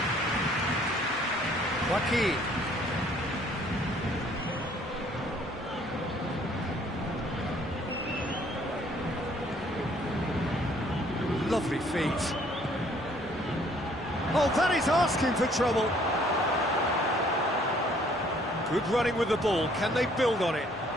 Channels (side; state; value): both; normal; correlation 0.61